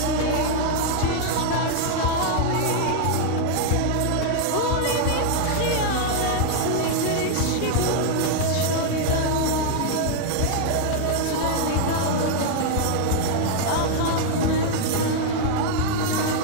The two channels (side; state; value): both; different; correlation 0.00